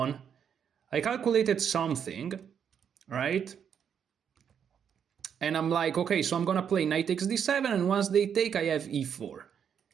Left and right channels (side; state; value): left; quieter; 7.9 dB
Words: I calculated something, right? And I'm like, okay, so I'm gonna play knight takes d7, and once they take, I have e4.